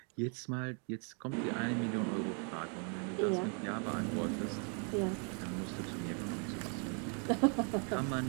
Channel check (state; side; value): quieter; left; 39.4 dB